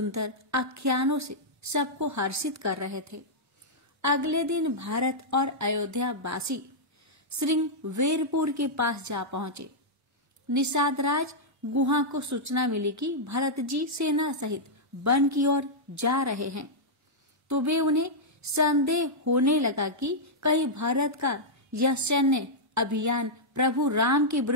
आख्यानों से सबको हर्षित कर रहे थे। अगले दिन भारत और अयोध्या वासी श्रृंगवेरपुर के पास जा पहुंचे। निषाद राज गुहा को सूचना मिली कि भरत जी सेना सहित वन की ओर जा रहे हैं, तो वे उन्हें संदेह होने लगा कि कहीं भारत का यह सैन्य अभियान प्रभु राम के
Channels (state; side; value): normal; both; correlation -0.08